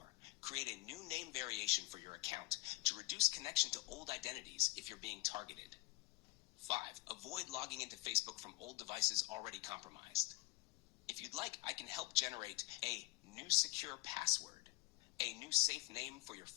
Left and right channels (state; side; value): quieter; right; 22.6 dB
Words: Create a new name variation for your account to reduce connection to old identities if you're being targeted. 5. Avoid logging into Facebook from old devices already compromised. If you'd like, I can help generate a new secure password, a new safe name for your